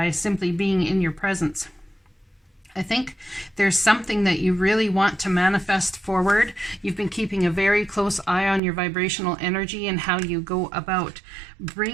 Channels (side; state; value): left; drops out; at 8.6 s